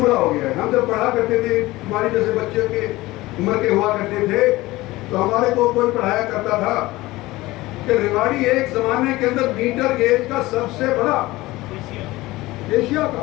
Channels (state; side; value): quieter; right; 19.1 dB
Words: हो गया है। हम जब पढ़ा करते थे, हमारे जैसे बच्चे के उम्र के हुआ करते थे, तो हमारे को कोई पढ़ाया करता था कि रेवाड़ी एक जमाने के अंदर मीटर गेज का सबसे बड़ा एशिया का